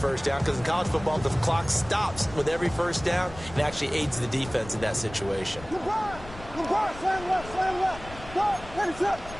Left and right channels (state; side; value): noise; left; rumble, 15 dB below the sound